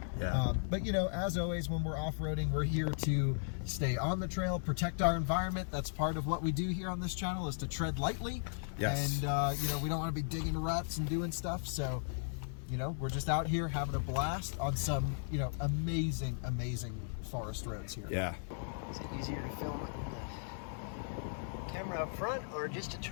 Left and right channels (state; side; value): silent; right; digital silence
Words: Yeah. But you know, as always, when we're off-roading, we're here to stay on the trail, protect our environment. That's part of what we do here on this channel, is to tread lightly. Yes. And you know, we don't want to be digging ruts and doing stuff. So, you know, we're just out here having a blast on some, you know, amazing forest roads here. Yeah. Is it easier to film with the camera up front or just to